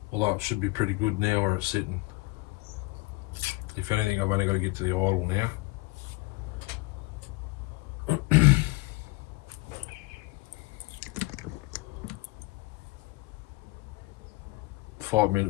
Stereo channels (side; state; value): right; quieter; 23.3 dB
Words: Although it should be pretty good now where it's sitting. If anything, I've only got to get to the idle now.